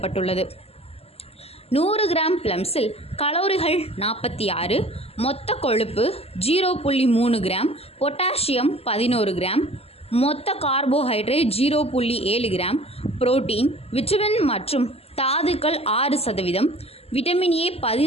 100 கிராம் ப்ளம்ஸில் கலோரிகள் 46, மொத்த கொழுப்பு 0.3 கிராம், பொட்டாசியம் 11 கிராம், மொத்த கார்போஹைட்ரேட் 0.7 கிராம், புரோட்டீன், விட்டமின் மற்றும் தாதுக்கள் 6%, விட்டமின் A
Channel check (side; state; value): right; late; 0.29 ms